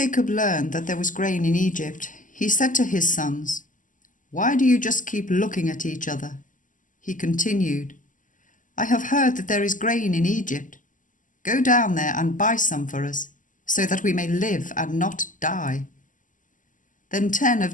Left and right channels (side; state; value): right; late; 0.38 ms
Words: learned that there was grain in Egypt, he said to his sons, "Why do you just keep looking at each other?" He continued, "I have heard that there is grain in Egypt. Go down there and buy some for us, so that we may live and not die." Then 10